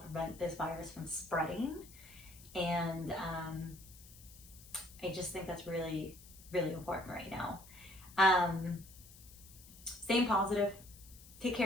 prevent this virus from spreading. And I just think that's really, really important right now. Staying positive, take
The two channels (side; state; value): left; noise; hiss, 20 dB below the sound